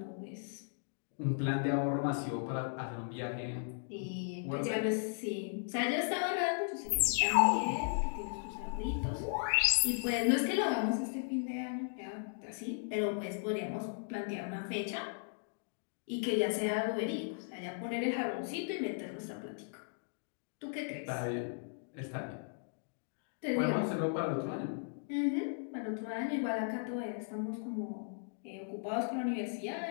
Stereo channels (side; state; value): right; silent; digital silence